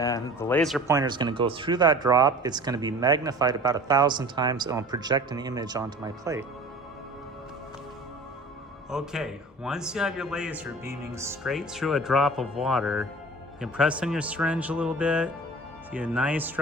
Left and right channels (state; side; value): normal; both; correlation 0.42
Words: the laser pointer is going to go through that drop. It's going to be magnified about 1,000 times, and I'll project an image onto my plate. Okay, once you have your laser beaming straight through a drop of water, you can press on your syringe a little bit, see a nice